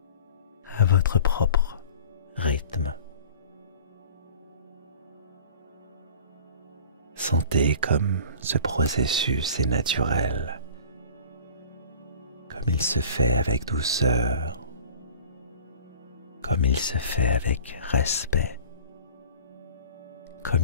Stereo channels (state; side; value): inverted; both; correlation -0.43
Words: à votre propre rythme. Sentez comme ce processus est naturel, comme il se fait avec douceur, comme il se fait avec respect,